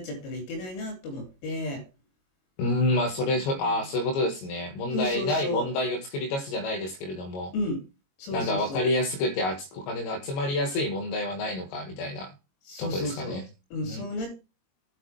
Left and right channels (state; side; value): late; right; 22 ms